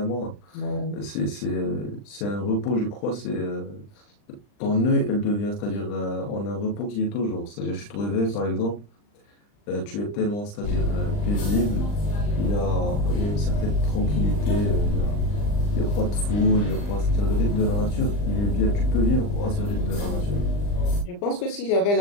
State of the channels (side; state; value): right; late; 39 ms